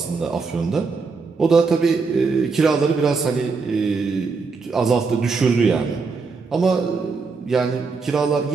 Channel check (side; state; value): left; quieter; 4.6 dB